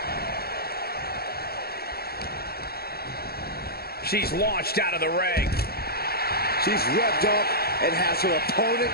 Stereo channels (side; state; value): right; late; 0.45 ms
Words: She's launched out of the ring. She's revved up and has her opponent